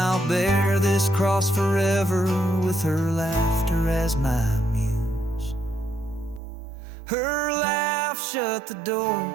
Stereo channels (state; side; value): drops out; left; at 6.4 s